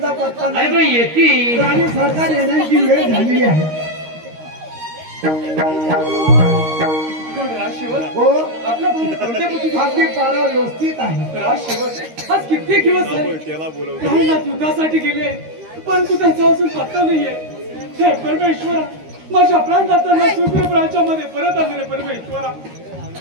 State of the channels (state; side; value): late; left; 13 ms